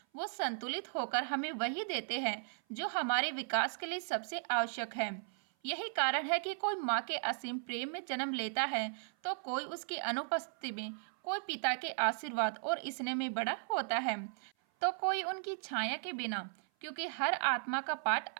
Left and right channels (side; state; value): left; silent; 53 dB below the other